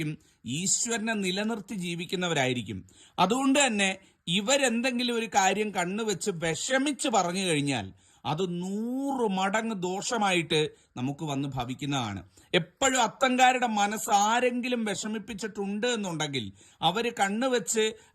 ഈശ്വരനെ നിലനിർത്തി ജീവിക്കുന്നവരായിരിക്കും. അതുകൊണ്ട് തന്നെ ഇവരെന്തെങ്കിലും ഒരു കാര്യം കണ്ണുവെച്ച് വിഷമിച്ച് പറഞ്ഞു കഴിഞ്ഞാൽ അത് 100 മടങ്ങ് ദോഷമായിട്ട് നമുക്ക് വന്ന് ഭവിക്കുന്നതാണ്. എപ്പോഴും അത്തങ്കാരുടെ മനസ്സ് ആരെങ്കിലും വിഷമിപ്പിച്ചിട്ടുണ്ട് എന്നുണ്ടെങ്കിൽ, അവര് കണ്ണുവെച്ച്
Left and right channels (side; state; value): both; identical; correlation 1.00